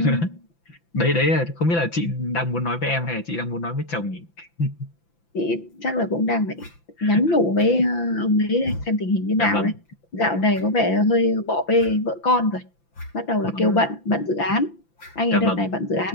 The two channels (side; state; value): right; late; 5.9 ms